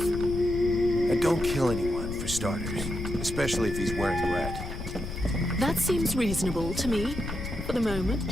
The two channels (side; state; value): left; noise; rumble, 7 dB below the sound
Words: And don't kill anyone, for starters. Especially if he's wearing red. That seems reasonable to me, for the